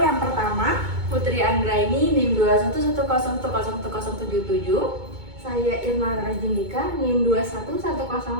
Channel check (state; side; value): late; left; 2.2 ms